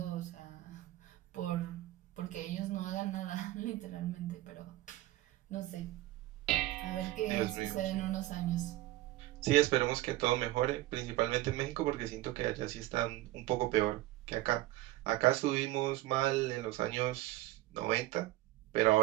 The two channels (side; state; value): left; quieter; 16.7 dB